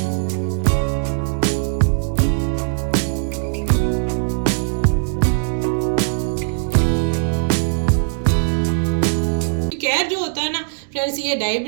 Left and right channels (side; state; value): left; silent; digital silence